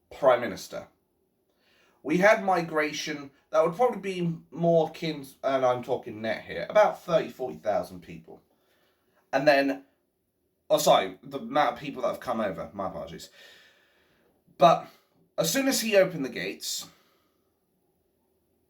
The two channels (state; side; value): identical; both; correlation 1.00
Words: Prime Minister, we had migration that would probably be more akin, and I'm talking net here, about 40,000 people. And then, the amount of people that have come over, my apologies. But as soon as he opened the gates,